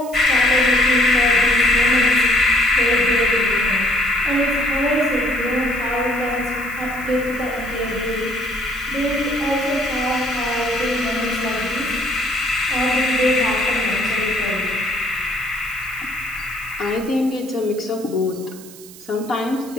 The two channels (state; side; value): noise; right; hiss, 19 dB below the sound